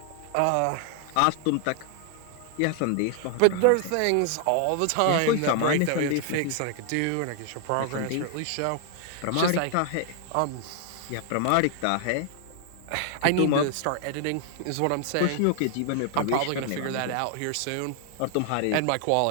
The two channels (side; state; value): both; different; correlation 0.00